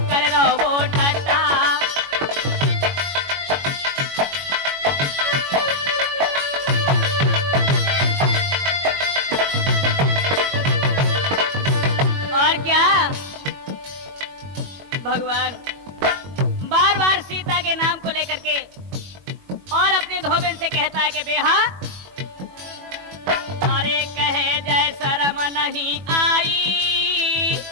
करे रहो वो ठट्टा। और क्या? भगवान बार बार सीता के नाम को लेकर के और अपने धोबिन से कहता है कि बेहा, अरे कहे जय शर्म नहीं आई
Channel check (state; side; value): late; left; 21 ms